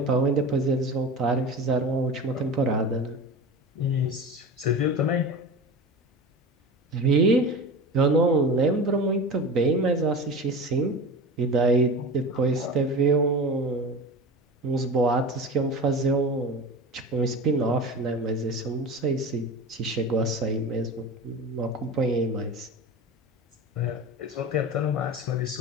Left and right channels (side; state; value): both; normal; correlation 0.31